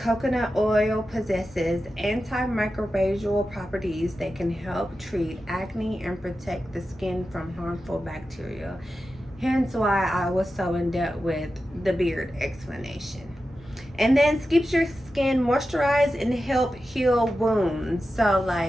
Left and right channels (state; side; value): normal; both; correlation 0.92